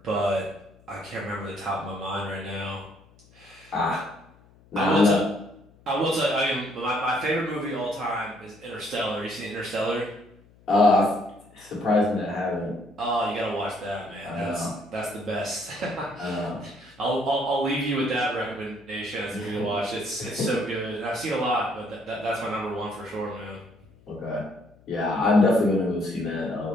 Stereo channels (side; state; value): left; noise; hum, 27 dB below the sound